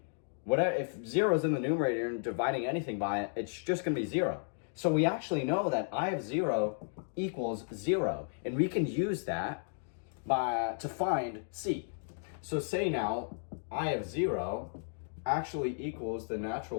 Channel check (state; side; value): silent; right; digital silence